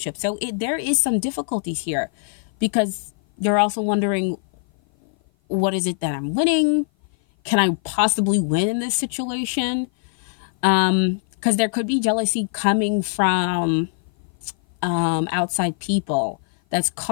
So there is some difficulties here because you're also wondering, what is it that I'm winning? Can I possibly win in this situation? Because there could be jealousy coming from outside people that's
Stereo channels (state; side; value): silent; right; 56 dB below the other